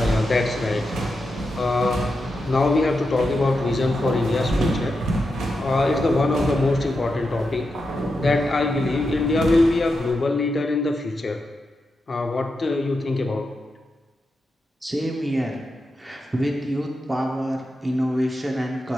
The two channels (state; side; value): normal; both; correlation 0.87